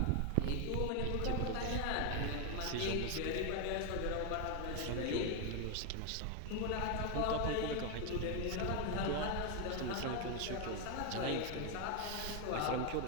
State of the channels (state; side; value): different; both; correlation 0.01